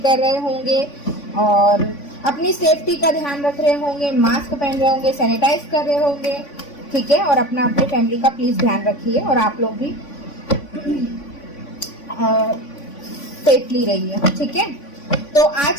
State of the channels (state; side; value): late; right; 3.5 ms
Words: कर रहे होंगे और अपनी सेफ्टी का ध्यान रख रहे होंगे, मास्क पहन रहे होंगे, सैनिटाइज कर रहे होंगे। ठीक है, और अपना अपनी फैमिली का प्लीज ध्यान रखिए और आप लोग भी सेफली रहिए। ठीक है, तो